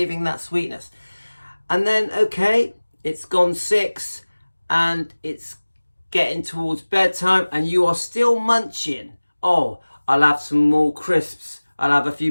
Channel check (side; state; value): both; inverted; correlation -1.00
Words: that sweetness. And then, okay, it's gone 6 and it's getting towards bedtime and you are still munching. Oh, I'll have some more crisps. I'll have a